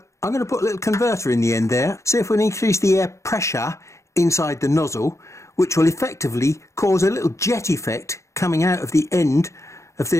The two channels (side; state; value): right; late; 0.14 ms